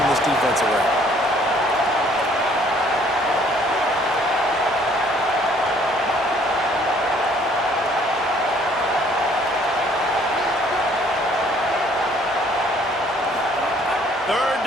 this defense around. Third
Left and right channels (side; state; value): both; normal; correlation 0.60